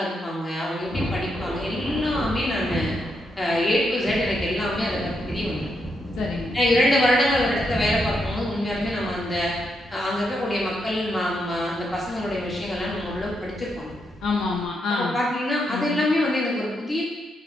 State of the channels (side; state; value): both; normal; correlation 0.80